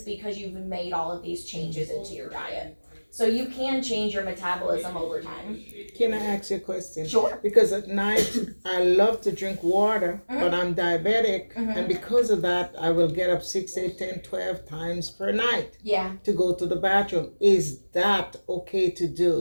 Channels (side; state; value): both; inverted; correlation -1.00